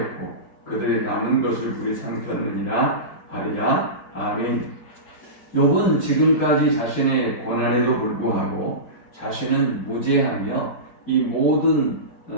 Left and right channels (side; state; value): right; late; 4.6 ms